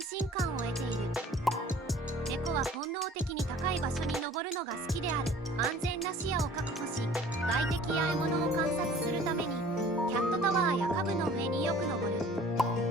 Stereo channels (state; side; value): normal; both; correlation 0.49